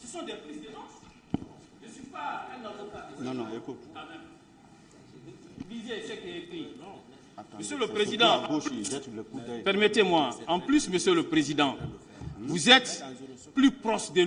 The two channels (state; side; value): identical; both; correlation 1.00